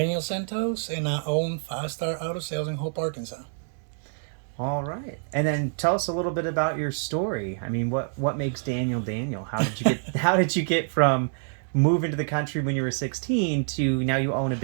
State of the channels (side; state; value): left; silent; digital silence